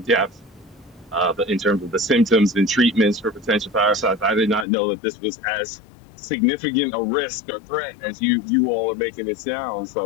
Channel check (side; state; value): right; drops out; at 4.7 s